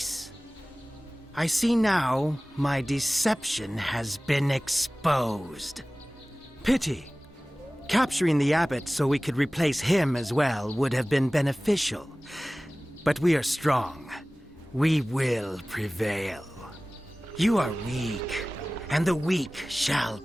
I see now my deception has been exposed. Pity. Capturing the abbot so we could replace him as well would have been beneficial. But we are strong. We will prevail. You are weak, and the weak shall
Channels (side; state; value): both; normal; correlation 0.98